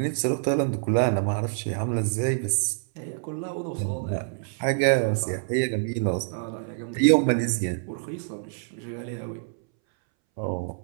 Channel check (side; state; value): left; silent; 61 dB below the other